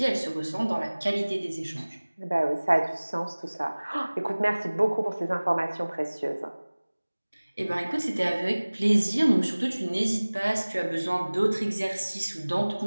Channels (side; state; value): both; inverted; correlation -1.00